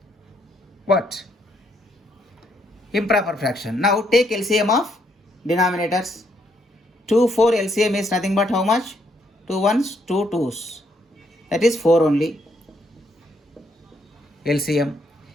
what? Improper fraction. Now take LCM of denominators. 2 4 LCM is nothing but how much? 2 1s, 2 2s. That is 4 only. LCM.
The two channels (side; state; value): both; normal; correlation 0.73